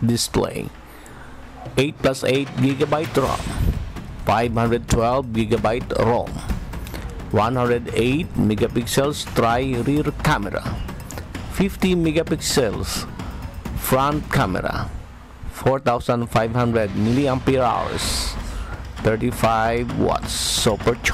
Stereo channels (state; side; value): identical; both; correlation 1.00